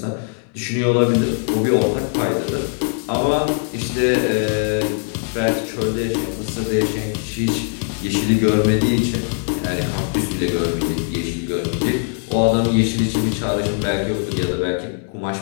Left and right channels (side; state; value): right; silent; 59 dB below the other